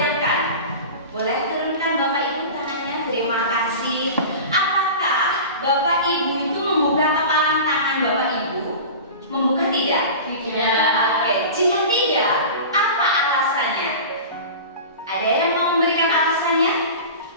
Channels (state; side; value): inverted; both; correlation -0.33